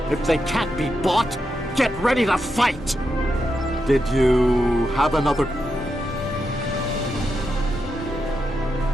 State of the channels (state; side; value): normal; both; correlation 0.85